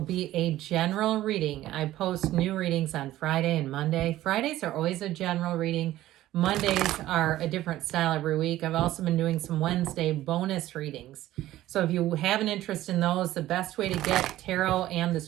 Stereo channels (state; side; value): quieter; left; 14.7 dB